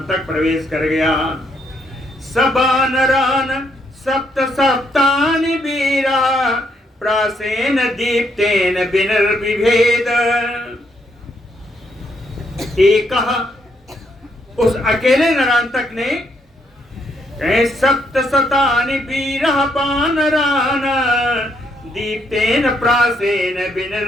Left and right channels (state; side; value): normal; both; correlation 0.74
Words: प्रवेश कर गया। सबानरान सप्त सप्तानि वीरा प्रासेन दीप्तेन विनिर्विभेद, एक उस अकेले नरांतक ने सप्त शतानि वीरः वानरान् दीप्तेन प्रासेन